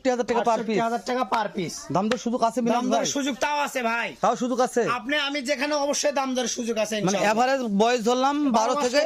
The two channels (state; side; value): identical; both; correlation 1.00